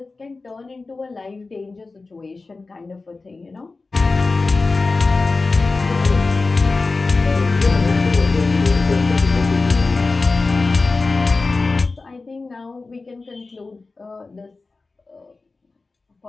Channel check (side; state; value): right; quieter; 3.8 dB